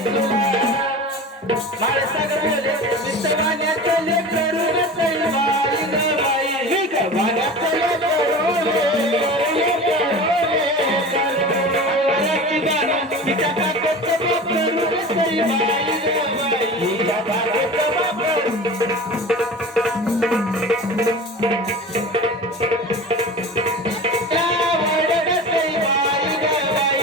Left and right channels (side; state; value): both; normal; correlation 0.34